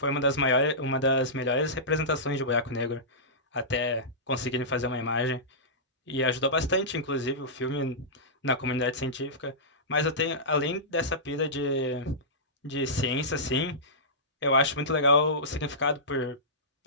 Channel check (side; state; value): both; normal; correlation -0.17